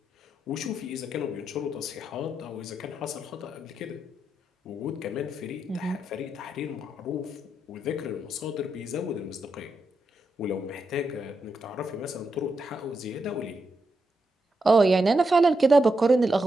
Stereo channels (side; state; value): both; normal; correlation 0.84